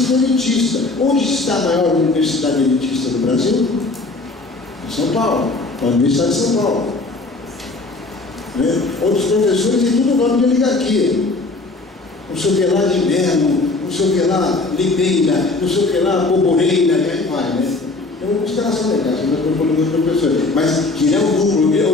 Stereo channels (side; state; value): right; quieter; 3.4 dB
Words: elitista. Onde está a maior universidade elitista do Brasil? Em São Paulo, a Universidade de São Paulo. Né? Outros professores têm tudo nome de oligarquia. Não sei o que lá de Melo, não sei o que lá Limeira, não sei o que lá Boboreira, e aí vai, né? Então, os caras são legais, eu estou falando dos professores, mas que é o núcleo